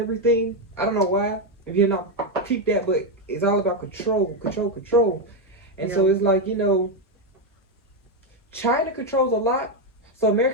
I don't know why. If you're not peep that, but it's all about control, control, control. And so it's like, you know, China controls a lot. So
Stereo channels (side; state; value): both; normal; correlation 0.06